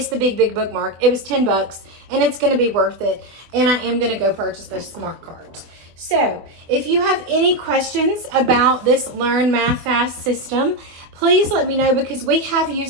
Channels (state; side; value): late; left; 24 ms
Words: the Big bookmark. It was $10 and it's going to be worth it. And I am going to go purchase those smart cards. So if you have any questions about this Learn Math Fast system, please let me know because we have